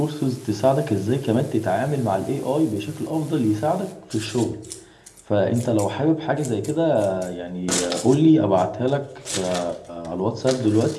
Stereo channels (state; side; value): identical; both; correlation 1.00